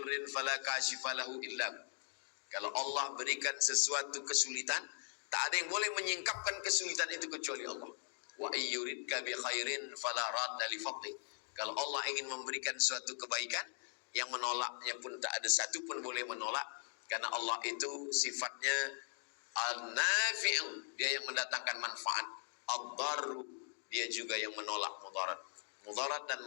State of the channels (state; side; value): silent; right; 51 dB below the other